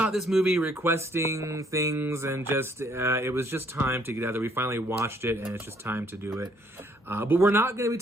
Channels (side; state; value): both; normal; correlation 0.65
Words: this movie, requesting things, and just it was just time to get out there. We finally watched it, and it's just time to do it. But we're not going to be